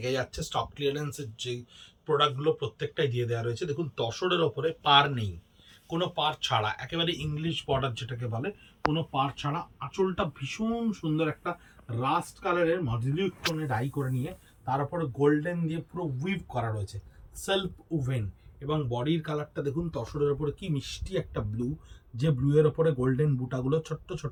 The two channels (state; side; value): identical; both; correlation 1.00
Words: যাচ্ছে। স্টক ক্লিয়ারেন্সের যে প্রোডাক্টগুলো প্রত্যেকটাই দিয়ে দেওয়া রয়েছে। দেখুন, তসরের ওপরে পার নেই, কোনো পার ছাড়া, একেবারে ইংলিশ বর্ডার যেটাকে বলে, কোনো পার ছাড়া। আঁচলটা ভীষণ সুন্দর একটা রাস্ট কালারের মডিউলিক টোনে ডাই করে নিয়ে তার উপরে গোল্ডেন দিয়ে পুরো উইভ করা রয়েছে, সেলফ উভেন। এবং বডির কালারটা দেখুন, তসরের ওপরে কি মিষ্টি একটা ব্লু, যে ব্লু এর ওপরে গোল্ডেন বুটাগুলো ছোট্ট